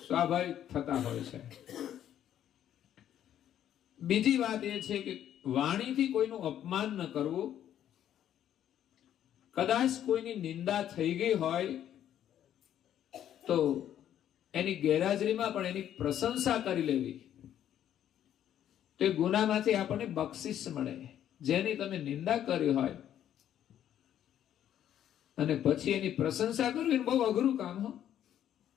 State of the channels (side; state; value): right; quieter; 10.7 dB